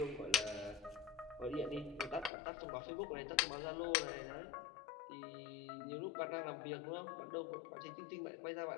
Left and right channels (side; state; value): right; drops out; at 2.3 s